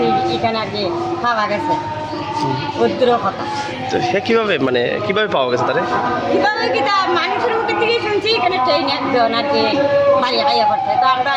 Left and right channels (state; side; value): identical; both; correlation 1.00